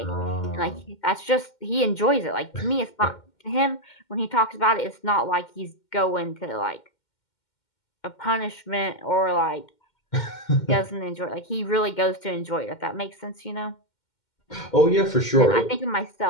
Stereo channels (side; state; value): right; late; 2.1 ms